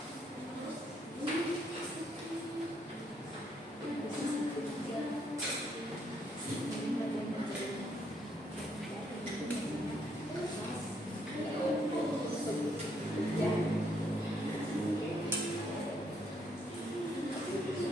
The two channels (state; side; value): normal; both; correlation 0.72